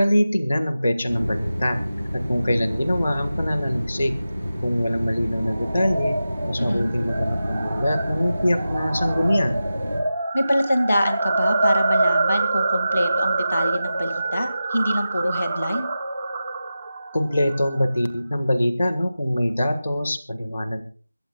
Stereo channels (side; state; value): both; inverted; correlation -0.93